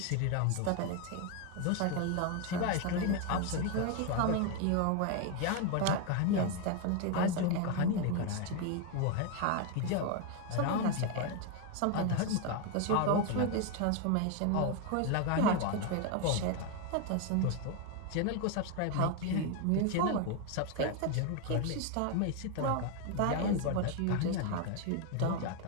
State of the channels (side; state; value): both; different; correlation 0.01